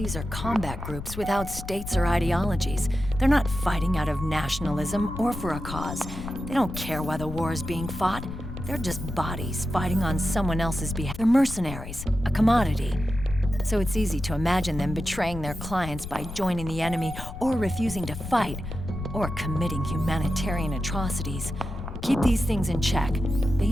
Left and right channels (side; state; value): left; noise; rumble, 10 dB below the sound